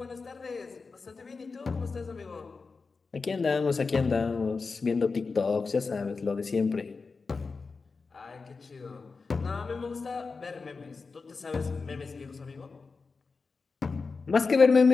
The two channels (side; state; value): right; quieter; 4.5 dB